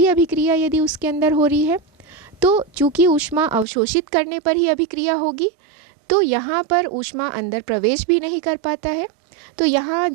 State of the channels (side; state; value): left; drops out; at 3.7 s